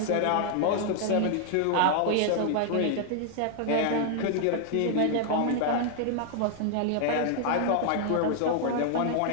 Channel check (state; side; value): different; both; correlation 0.00